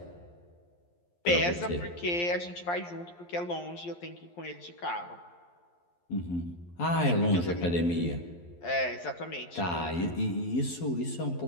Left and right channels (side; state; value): right; late; 11 ms